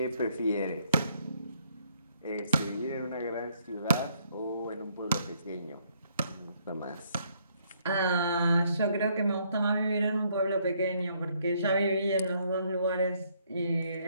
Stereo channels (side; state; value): both; inverted; correlation -0.69